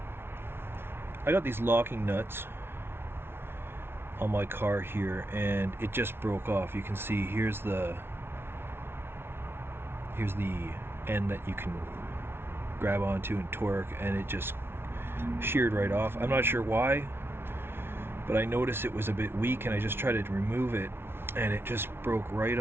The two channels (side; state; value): left; late; 0.11 ms